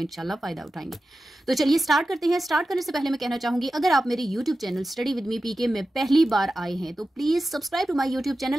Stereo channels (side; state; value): both; normal; correlation 0.93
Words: फ़ायदा उठाएंगे। तो चलिए स्टार्ट करते हैं। स्टार्ट करने से पहले मैं कहना चाहूँगी अगर आप मेरे YouTube channel study with me PK में पहली बार आए हैं तो please subscribe to my YouTube